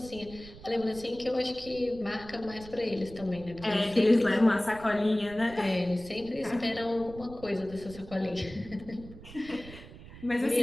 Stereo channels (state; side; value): noise; right; rumble, 17 dB below the sound